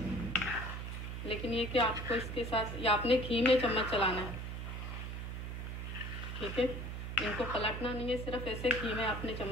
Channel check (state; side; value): noise; right; hum, 5 dB below the sound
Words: लेकिन ये कि आपको इसके साथ या आपने घी में चम्मच चलाना है, ठीक है। इनको पलटना नहीं है, सिर्फ ऐसे घी में आपने